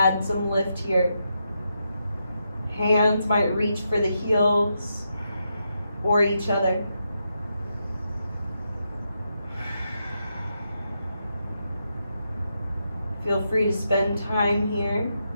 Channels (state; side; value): inverted; both; correlation -0.83